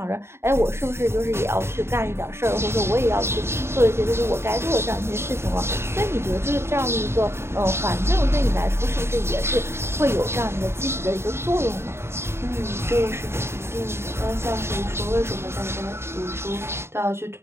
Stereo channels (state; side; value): late; left; 0.12 ms